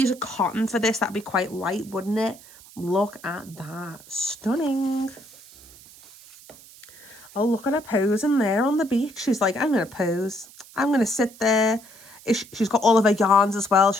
a cotton for this. That'd be quite light, wouldn't it? Look at that. Stunning. Oh, look at her posing there on the beach. She's like, I'm going to pose. I'm going to sit there. She's got all of her yarns as well.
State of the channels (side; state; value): right; noise; hiss, 21 dB below the sound